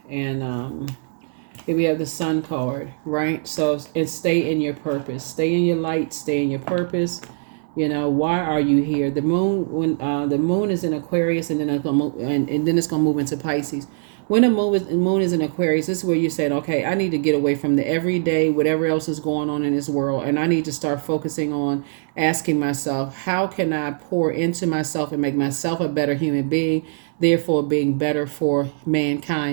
And here we have the Sun card, right? So, and stay in your purpose. Stay in your light. Stay in your purpose. Why are you here? The moon, when the moon is in Aquarius, and then it's gonna move, and then it's gonna move into Pisces. When the moon is in Aquarius, this is where you're saying, okay, I need to get away from the everyday, whatever else is going on in this world, and I need to start focusing on asking myself, how can I pour into myself and make myself a better human being, therefore being better for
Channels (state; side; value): silent; left; 64 dB below the other